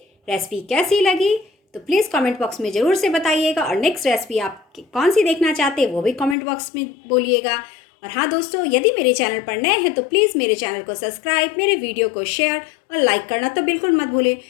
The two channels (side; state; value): right; drops out; at 6.4 s